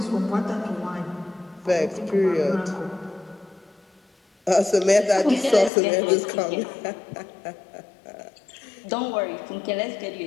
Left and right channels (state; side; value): drops out; right; at 5.7 s